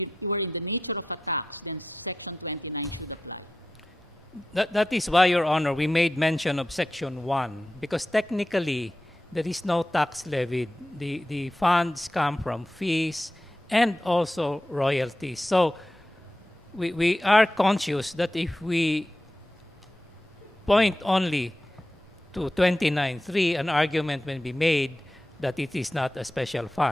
were in the nature of a tax, then Section 29 should apply. That is why, Your Honor, we made mention of Section 1, because technically there is no tax levied. The funds come from fees and also royalties. So we are conscious that if we point only to 29.3, an argument may be made that it is not a special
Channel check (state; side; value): normal; both; correlation 0.91